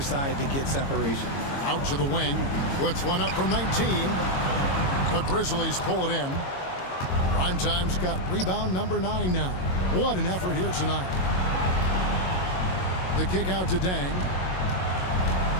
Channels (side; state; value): right; late; 22 ms